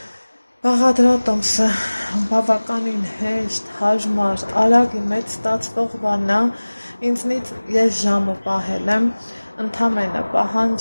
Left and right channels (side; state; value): both; inverted; correlation -1.00